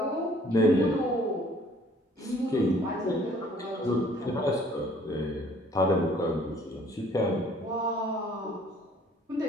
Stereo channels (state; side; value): normal; both; correlation 0.57